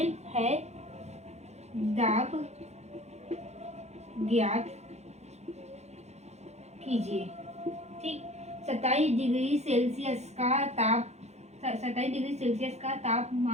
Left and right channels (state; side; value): late; left; 0.32 ms